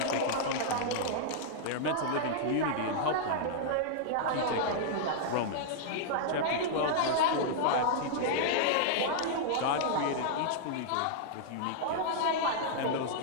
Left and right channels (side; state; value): both; different; correlation -0.01